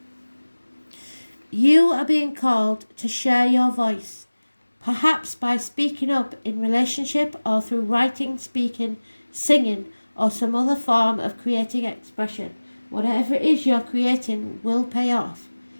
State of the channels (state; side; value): inverted; both; correlation -1.00